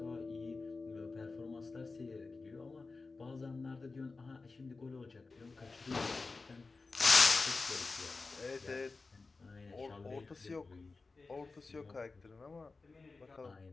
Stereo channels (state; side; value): quieter; right; 3.9 dB